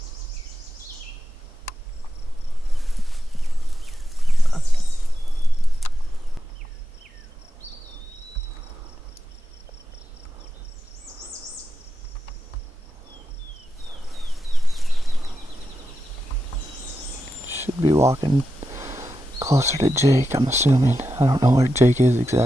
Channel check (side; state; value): both; normal; correlation 0.90